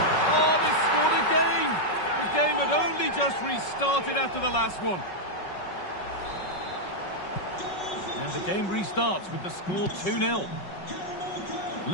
Oh, they scored again. The game had only just restarted after the last one. And the game restarts with the score 2-0.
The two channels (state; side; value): late; right; 5.3 ms